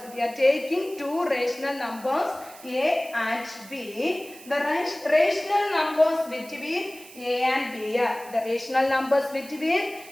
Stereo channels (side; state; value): right; noise; hiss, 19 dB below the sound